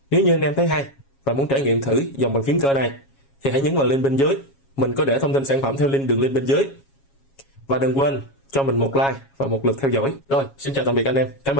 Nếu như anh em thấy hay và muốn trải nghiệm thử dòng bàn phím cơ này thì hãy nhấn vào link bên dưới, mình có để thông tin sản phẩm theo đường link bên dưới. Và đừng quên cho mình một like và một lượt theo dõi. Rồi, xin chào tạm biệt anh em, cảm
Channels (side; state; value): right; late; 7.3 ms